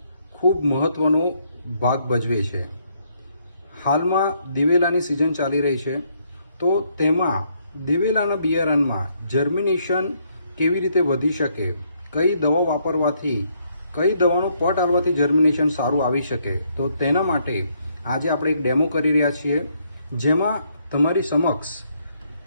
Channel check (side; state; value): both; inverted; correlation -0.71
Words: ખૂબ મહત્વનો ભાગ ભજવે છે. હાલમાં દિવેલાની સિઝન ચાલી રહી છે, તો તેમાં દિવેલાના બિયારણમાં જર્મિનેશન કેવી રીતે વધી શકે, કઈ દવા વાપરવાથી, કઈ દવાનો પટ આવવાથી જર્મિનેશન સારું આવી શકે, તો તેના માટે આજે આપણે એક ડેમો કરી રહ્યા છીએ, જેમાં તમારી સમક્ષ